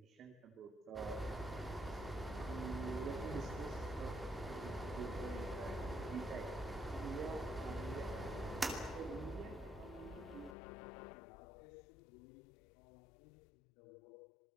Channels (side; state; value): right; drops out; at 10.6 s